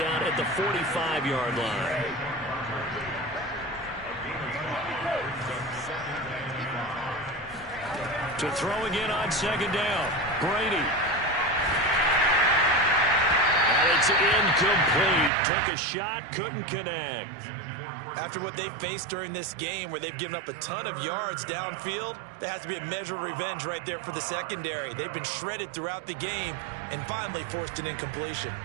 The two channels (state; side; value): drops out; left; at 15.3 s